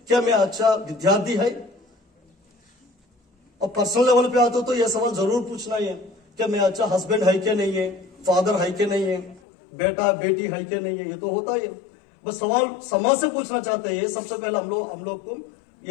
क्या मैं अच्छा विद्यार्थी है। और पर्सनल लेवल पे आते हो तो यह सवाल जरूर पूछना है, क्या मैं अच्छा हस्बैंड है कि नहीं है, फादर है कि नहीं है, बेटा बेटी है कि नहीं है। ये तो होता है, बस सवाल समाज से पूछना चाहते हैं। सबसे पहले हम लोग को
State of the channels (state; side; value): drops out; right; at 9.4 s